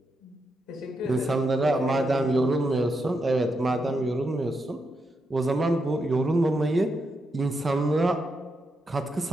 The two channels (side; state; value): both; normal; correlation 0.83